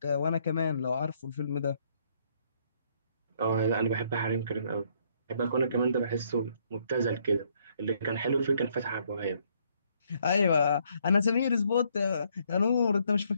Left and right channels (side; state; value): both; inverted; correlation -0.69